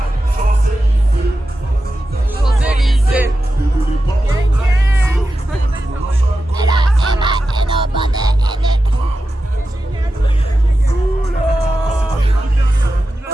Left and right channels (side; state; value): both; normal; correlation 0.91